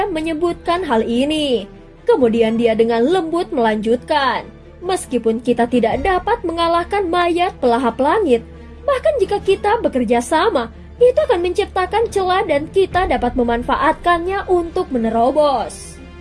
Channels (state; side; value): identical; both; correlation 1.00